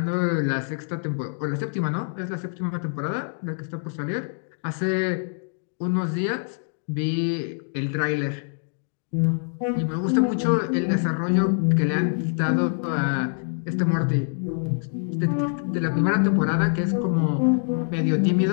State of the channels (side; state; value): right; silent; digital silence